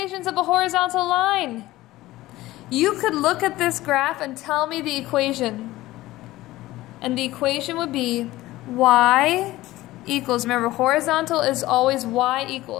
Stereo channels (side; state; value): right; quieter; 17.1 dB